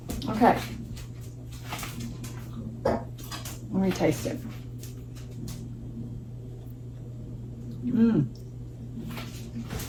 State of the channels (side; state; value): both; identical; correlation 1.00